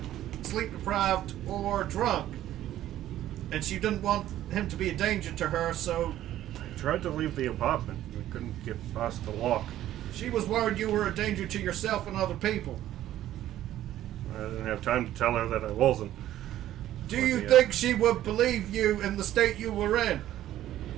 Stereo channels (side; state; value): left; quieter; 13.0 dB